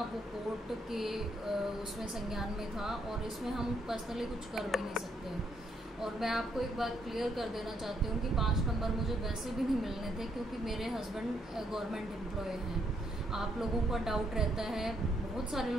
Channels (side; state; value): both; normal; correlation 0.74